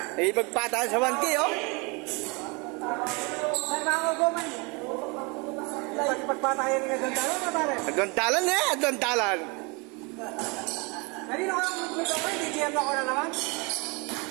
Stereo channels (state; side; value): quieter; left; 29.7 dB